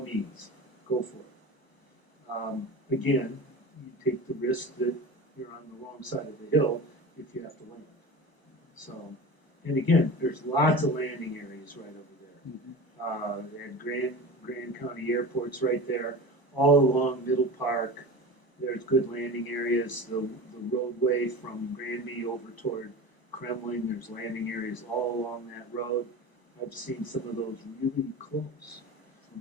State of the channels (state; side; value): late; right; 1.0 ms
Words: means, go for it. Again, you take the risk that you're on the wrong side of the hill if you have to land. So, and again, there's lots of landing areas right over there. And Grand County Airport's right there, all along Middle Park. There's good landing areas. The roadway from Granby over toward Kremling, there's landing areas all along that road. I've seen some of those really close.